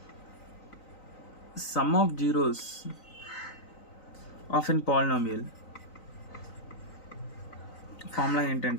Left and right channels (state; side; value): late; right; 3.9 ms